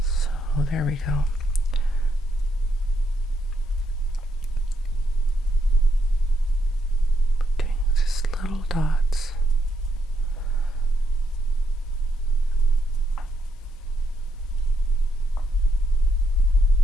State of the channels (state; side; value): normal; both; correlation 0.78